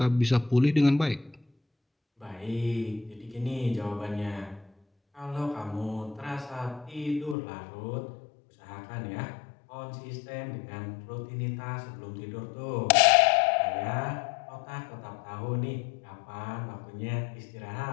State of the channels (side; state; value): right; drops out; at 7.4 s